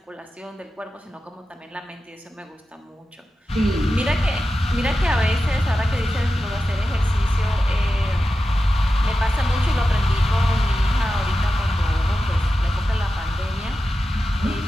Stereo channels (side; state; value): both; normal; correlation 0.92